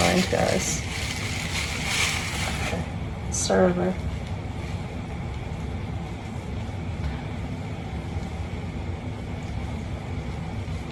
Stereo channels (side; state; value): both; identical; correlation 1.00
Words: mind, guys. Okay. Start over.